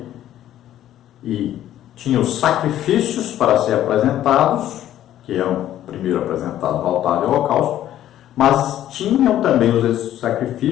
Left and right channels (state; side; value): quieter; right; 12.2 dB